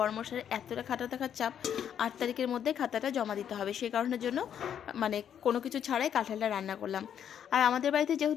এতটা খাতা থাকার চাপ। ৮ তারিখের মধ্যে খাতাটা জমা দিতে হবে। সেই কারণের জন্য মানে কোনো কিছু ছাড়াই কাঁঠালটা রান্না করলাম। আর আমাদের বাড়িতে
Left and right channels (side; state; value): right; quieter; 9.0 dB